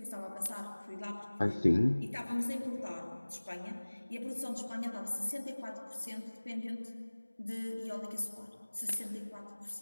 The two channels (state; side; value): inverted; both; correlation -1.00